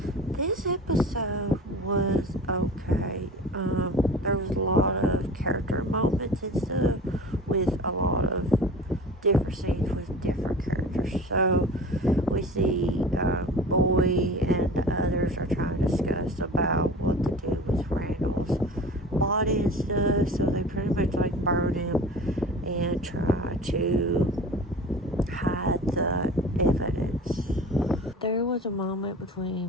This episode was okay. There was a lot of character moments and stuff with a lot of different scenes with different characters. So we see Boy and the others are trying to discuss about what to do with Randall's body and stuff. So they pretty much like burn him and try to hide the evidence. There was a moment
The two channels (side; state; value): both; normal; correlation 0.38